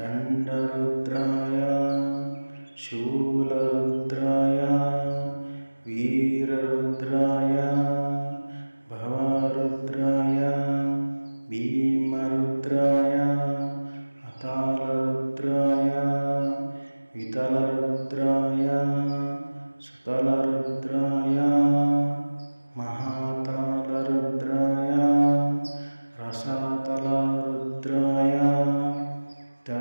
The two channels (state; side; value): inverted; both; correlation -1.00